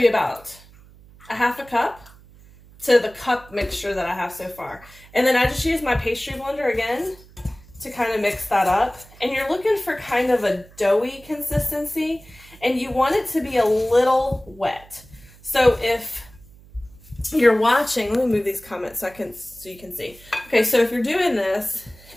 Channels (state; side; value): noise; right; hum, 24 dB below the sound